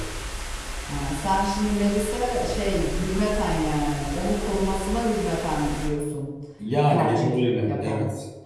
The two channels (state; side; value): identical; both; correlation 1.00